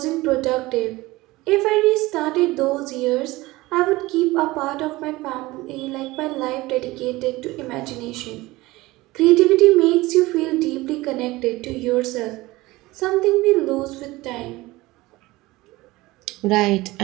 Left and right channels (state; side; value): quieter; left; 19.8 dB